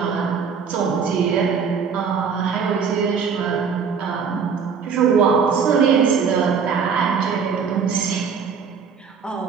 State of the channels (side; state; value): left; quieter; 6.2 dB